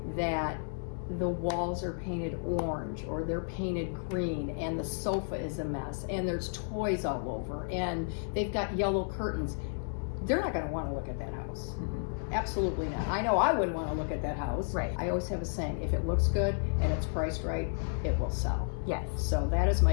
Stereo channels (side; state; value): right; silent; digital silence